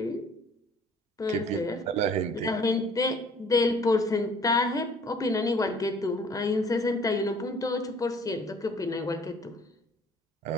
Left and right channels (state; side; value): normal; both; correlation 0.55